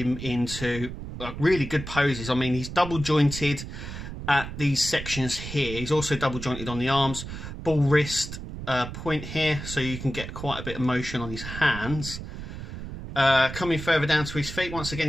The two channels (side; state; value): right; noise; rumble, 9 dB below the sound